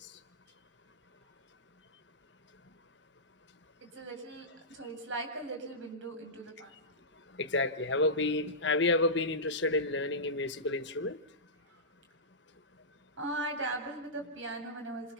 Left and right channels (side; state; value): both; normal; correlation -0.16